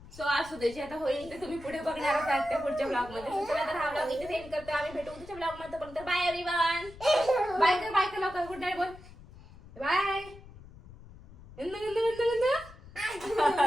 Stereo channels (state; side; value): noise; left; rumble, 19 dB below the sound